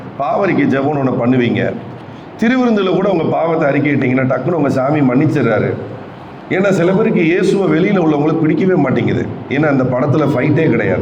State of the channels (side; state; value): both; identical; correlation 1.00